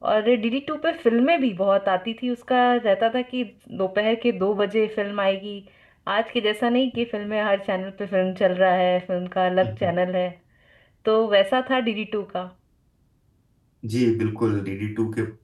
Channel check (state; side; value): identical; both; correlation 1.00